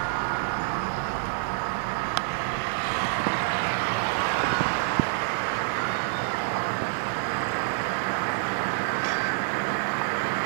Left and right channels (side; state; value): left; silent; digital silence